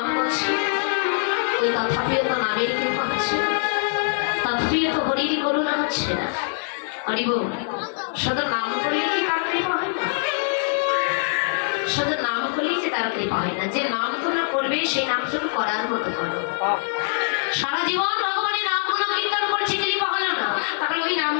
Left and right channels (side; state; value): right; silent; digital silence